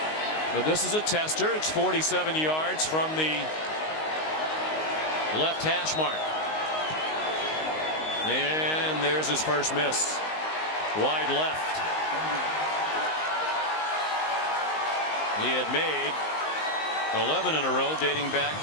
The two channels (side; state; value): right; late; 19 ms